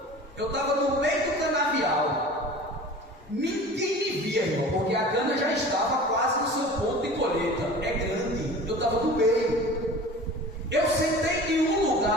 eu estava no meio do canavial. Ninguém me via, irmão, porque a cana já estava quase no seu ponto de colheita. É grande, eu estava no meio. Eu sentei em um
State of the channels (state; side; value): normal; both; correlation 0.40